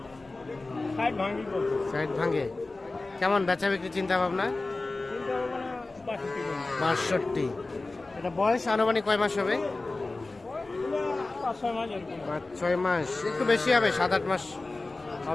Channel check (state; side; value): quieter; right; 3.3 dB